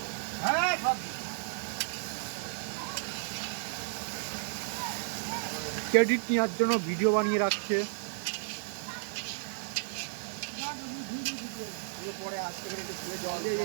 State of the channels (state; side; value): silent; left; 56 dB below the other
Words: হ্যাঁ সব ক্রেডিট নেওয়ার জন্য ভিডিও বানিয়ে রাখছে। পরে আসতে করে একটু ধুয়ে জল দিয়ে